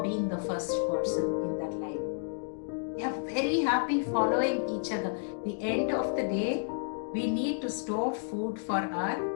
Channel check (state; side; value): silent; right; digital silence